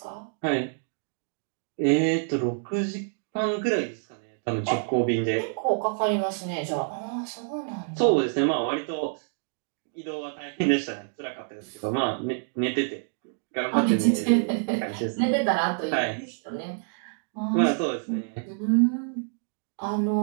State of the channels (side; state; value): left; silent; digital silence